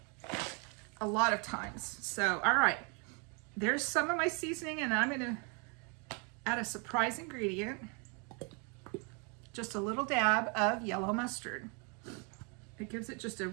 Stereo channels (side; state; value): left; quieter; 34.8 dB